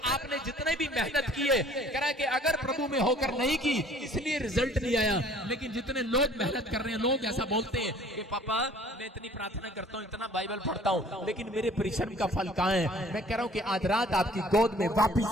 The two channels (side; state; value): both; normal; correlation 0.53